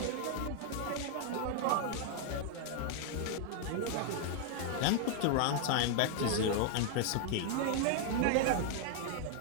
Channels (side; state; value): both; different; correlation 0.00